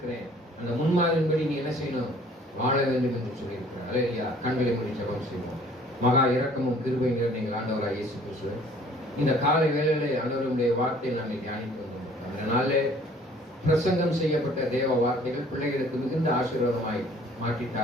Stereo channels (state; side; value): normal; both; correlation 0.55